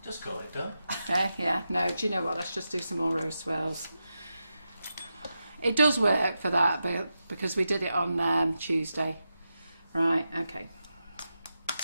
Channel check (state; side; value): inverted; both; correlation -0.89